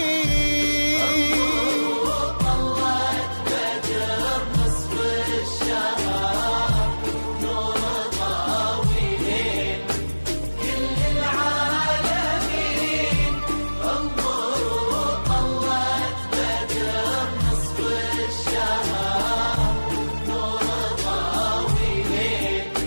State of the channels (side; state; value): both; inverted; correlation -1.00